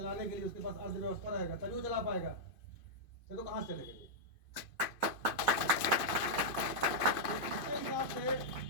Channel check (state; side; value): late; right; 2.5 ms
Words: के लिए, उसके पास अर्थव्यवस्था रहेगा तभी वो चला पाएगा, तो कहाँ से चलेगा। इसके हिसाब से